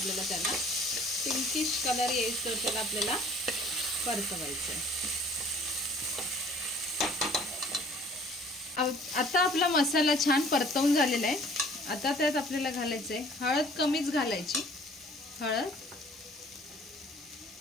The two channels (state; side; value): normal; both; correlation 0.53